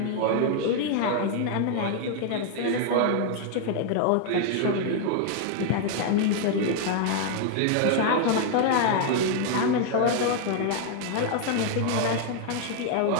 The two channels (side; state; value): both; different; correlation 0.00